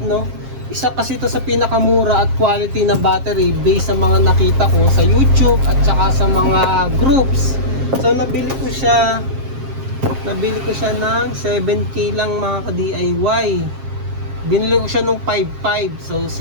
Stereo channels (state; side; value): late; left; 7.4 ms